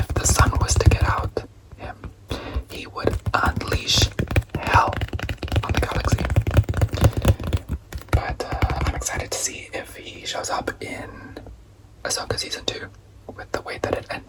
the Sun was to get out him, he would unleash hell on the galaxy. But I'm excited to see if he shows up in Ahsoka Season 2 with the way that it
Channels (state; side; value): identical; both; correlation 1.00